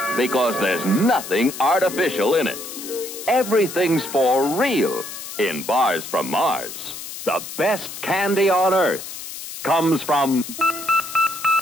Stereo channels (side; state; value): left; noise; hiss, 10 dB below the sound